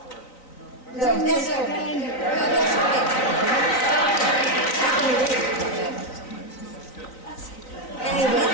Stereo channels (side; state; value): right; late; 3.9 ms